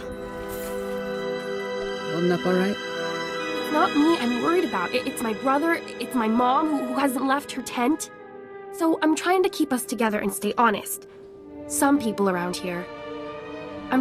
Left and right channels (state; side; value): identical; both; correlation 1.00